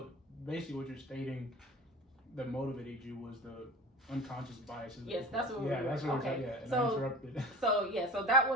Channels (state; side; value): normal; both; correlation 0.36